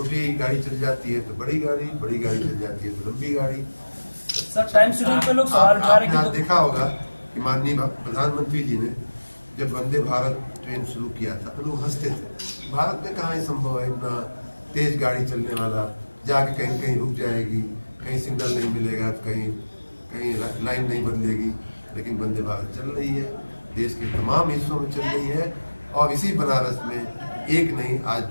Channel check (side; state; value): both; inverted; correlation -1.00